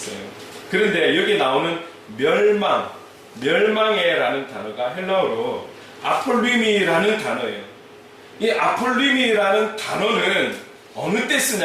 그런데 여기 나오는 멸망의라는 단어가 헬라어로 아폴리미라는 단어예요. 이 아폴리미라는 단어는 어느 때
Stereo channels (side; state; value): both; identical; correlation 1.00